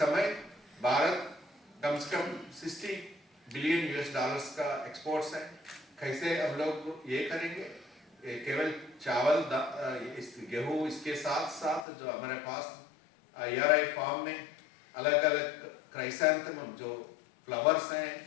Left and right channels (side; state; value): right; drops out; at 11.9 s